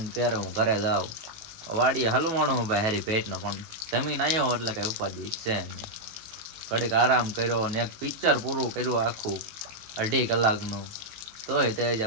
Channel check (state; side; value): late; left; 18 ms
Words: ને ક્યારે હું ઘરે જાઉં. વાડીએ હલવાણો હું ભાઈ હારી પેટનો પણ જમીન આવ્યો એટલે કઈ ઉપાધિ છે નહીં. ઘડીક આરામ કર્યો ને એક પિક્ચર પૂરું કર્યું આખું 2.5 કલાકનું. તોય તે